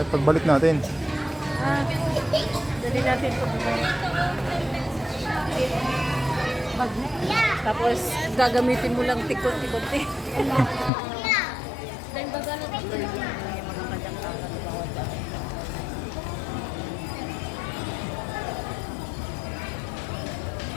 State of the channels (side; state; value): right; drops out; at 10.9 s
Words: pagbalik natin. Dali natin ito. Bagnet. Tapos gagamitin mo lang tikot-tikot eh. Dahil baga na ito. Yung mga kanyang-kakan na bawat dahil.